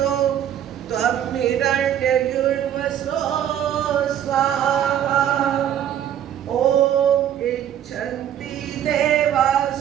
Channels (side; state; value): left; quieter; 10.4 dB